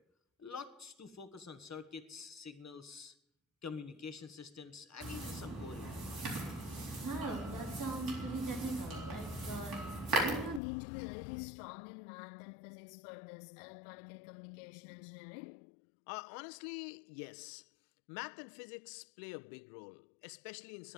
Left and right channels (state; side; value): drops out; right; at 10.6 s